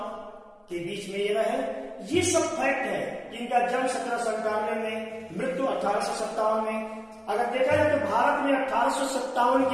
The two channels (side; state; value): both; identical; correlation 1.00